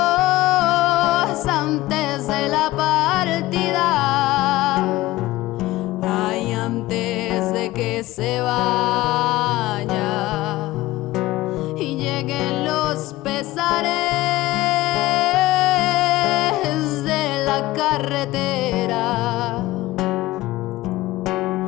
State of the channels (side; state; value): right; quieter; 17.6 dB